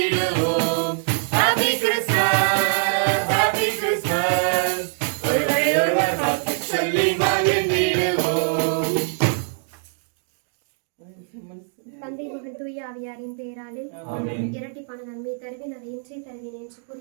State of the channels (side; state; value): left; silent; 63 dB below the other